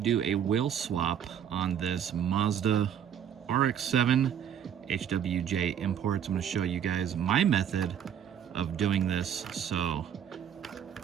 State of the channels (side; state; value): left; quieter; 9.0 dB